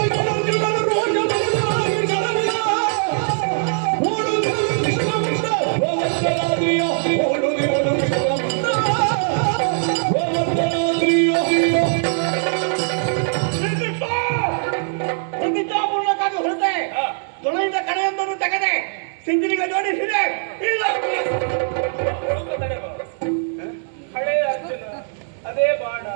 ತೊಳೆಯಿಂದ ಕಡೆಯೊಂದನ್ನು ತೆಗೆದೆ ಸಿಂಧನಿಗೆ ಜೋಡಿಸಿದೆ. ಹಳೆಯ ಅರ್ಜುನ, ಅದೇ ಬಾಣ,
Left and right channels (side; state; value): left; silent; digital silence